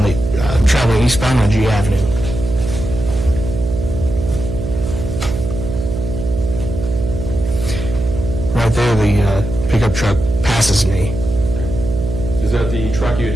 the traveling eastbound on G Avenue. right there, the pickup truck passes me. Is that the truck you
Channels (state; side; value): noise; right; hum, 5 dB below the sound